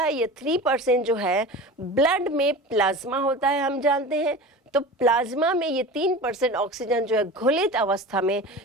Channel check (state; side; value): normal; both; correlation 0.33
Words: ये 3% जो है ब्लड में प्लाज्मा होता है, हम जानते हैं। तो प्लाज्मा में ये 3% ऑक्सीजन जो है घुलित अवस्था में